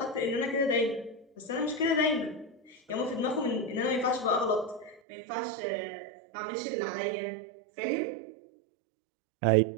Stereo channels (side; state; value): left; drops out; at 5.0 s